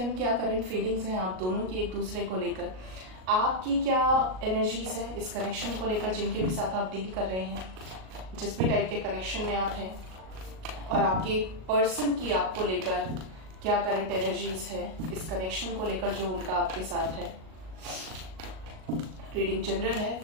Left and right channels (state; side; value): late; left; 38 ms